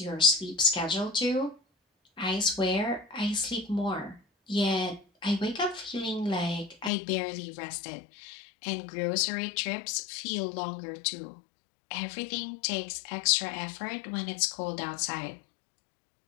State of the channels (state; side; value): drops out; right; at 6.9 s